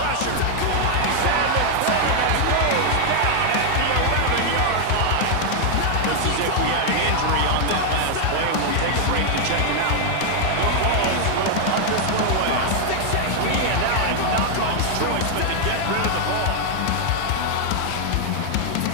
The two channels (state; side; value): different; both; correlation 0.00